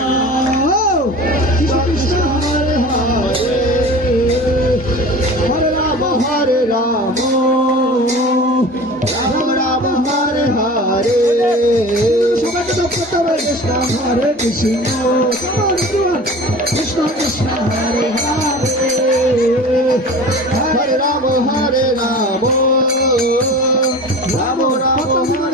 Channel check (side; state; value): both; normal; correlation 0.38